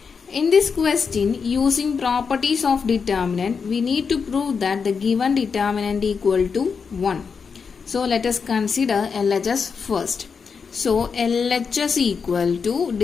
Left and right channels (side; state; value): right; quieter; 5.7 dB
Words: In this question, using properties of determinant, we need to prove that the given determinant equal to 1. So let us consider LHS first. So LHS equal to